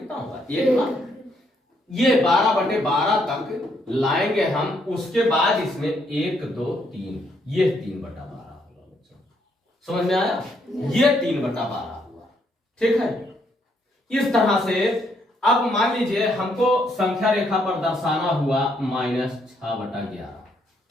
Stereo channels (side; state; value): both; normal; correlation 0.73